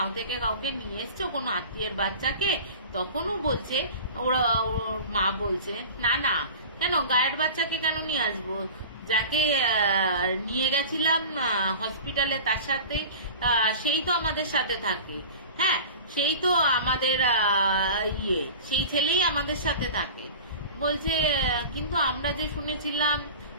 থেকে কাউকে নিয়ে এসছো, কোনো আত্মীয়ের বাচ্চাকে? তখনও বলছে ওর মা বলছে, না না, কেন গায়ের বাচ্চাকে কেন নিয়ে আসবো, যাকে নিয়ে গেছিলাম হসপিটালে তার সাথে, সেই তো আমাদের সাথে থাকে, হ্যাঁ সেই তো আমাদের ইয়ে, সেই ছেলেই আমাদের সাথে থাকে। বলছে কিন্তু আমরা যে শুনেছিলাম,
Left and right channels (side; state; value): both; inverted; correlation -0.36